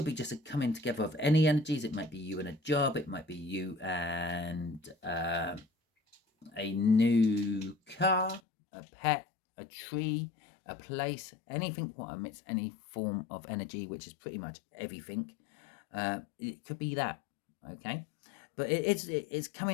be just a coming together of any energies. It might be you and a job. It might be you and a new car, a pet, a tree, a place, anything what emits any form of energy, which is pretty much everything. It could be that, okay, but it's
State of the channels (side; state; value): right; drops out; at 8.4 s